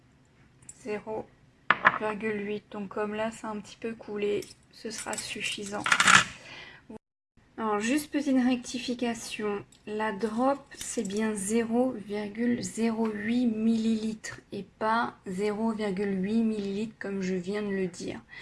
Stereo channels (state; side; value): identical; both; correlation 1.00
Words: 0,8. Donc comme là, c'est un petit peu coulé, ce sera suffisant. Alors, juste petite rectification, la drop, c'est bien 0,08 ml et pas 0,8 ml comme je viens de le dire.